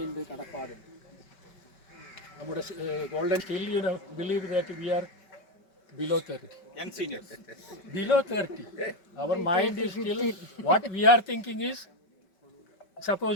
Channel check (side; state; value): right; late; 5.2 ms